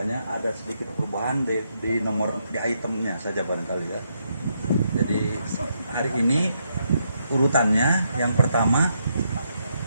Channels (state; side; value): inverted; both; correlation -0.78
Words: ada sedikit perubahan di nomor di itemnya saja barangkali ya. Jadi hari ini urutannya yang pertama